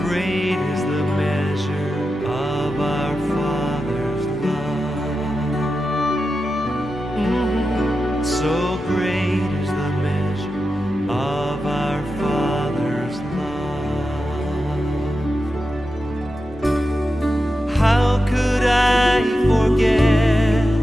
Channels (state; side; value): normal; both; correlation 0.90